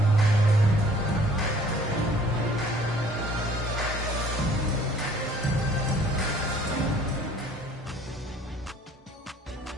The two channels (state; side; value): normal; both; correlation 0.55